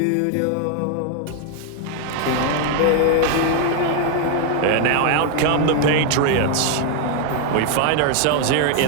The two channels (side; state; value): both; different; correlation 0.00